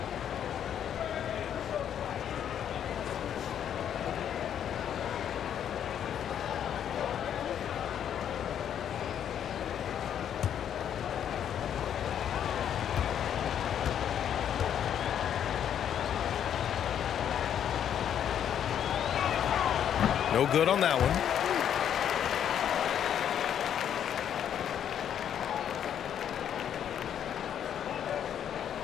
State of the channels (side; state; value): right; quieter; 9.4 dB